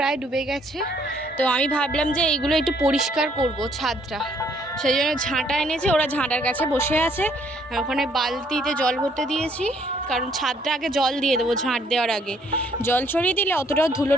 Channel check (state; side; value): normal; both; correlation 0.65